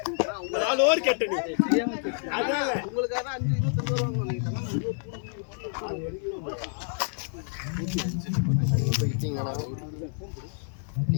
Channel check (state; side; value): silent; right; 59 dB below the other